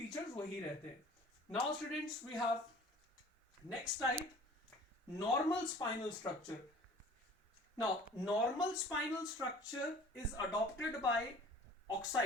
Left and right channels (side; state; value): both; normal; correlation 0.47